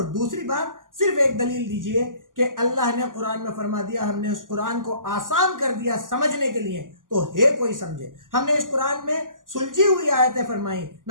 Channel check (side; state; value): left; late; 0.89 ms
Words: دوسری بات صرف ایک دلیل دیجئے کہ اللہ نے قرآن میں فرما دیا ہم نے اس قرآن کو آسان کر دیا سمجھنے کے لیے تو ہے کوئی سمجھے. ہم نے اس قرآن میں سلجھی ہوئی آیتیں فرمائی